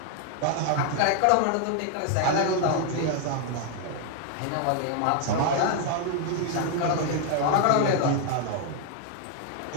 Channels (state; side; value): different; both; correlation 0.00